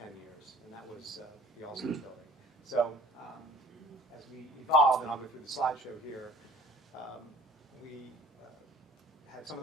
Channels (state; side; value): normal; both; correlation 0.52